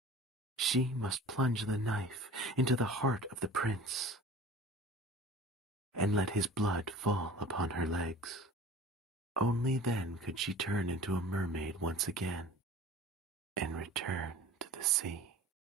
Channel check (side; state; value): both; normal; correlation 0.42